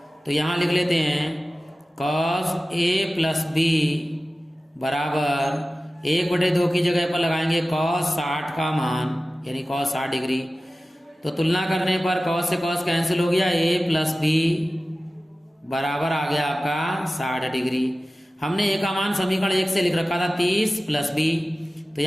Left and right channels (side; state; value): both; normal; correlation 0.96